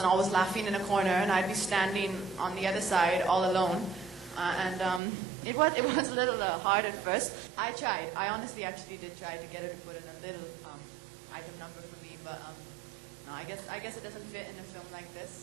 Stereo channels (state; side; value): drops out; left; at 5.0 s